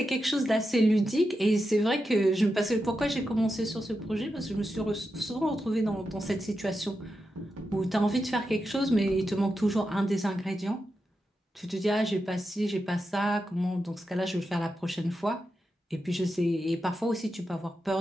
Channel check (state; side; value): normal; both; correlation 0.88